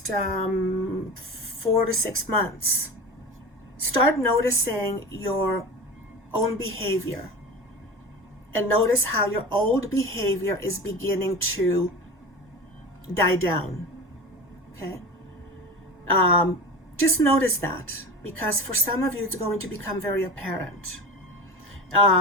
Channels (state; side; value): normal; both; correlation 0.30